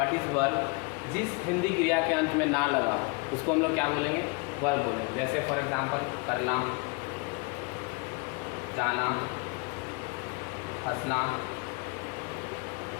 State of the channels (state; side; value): quieter; right; 30.6 dB